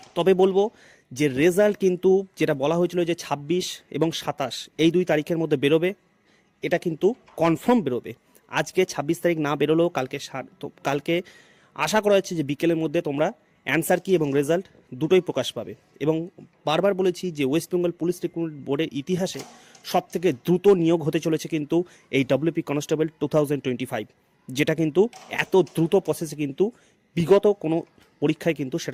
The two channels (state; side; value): identical; both; correlation 1.00